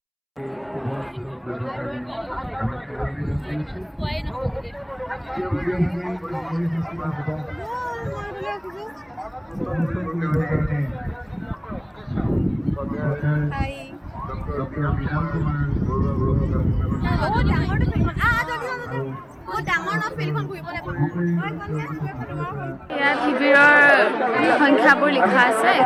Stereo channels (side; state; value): both; identical; correlation 1.00